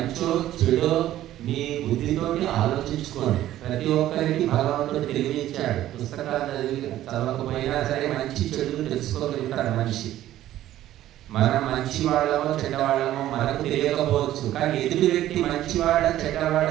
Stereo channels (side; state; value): left; quieter; 13.5 dB